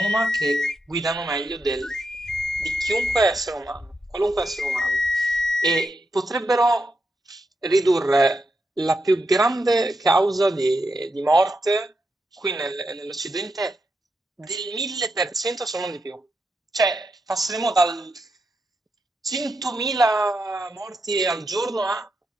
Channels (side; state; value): both; normal; correlation 0.84